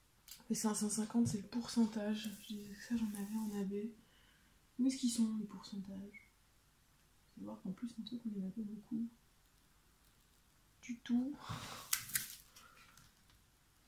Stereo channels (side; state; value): both; identical; correlation 1.00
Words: Les 550, c'est le pourcentage. Je disais que ça, j'en avais en AB. Où est-ce qu'ils sont, les pourcentages? Faut voir qu'en plus, un truc, on en a pas beaucoup. Du tout.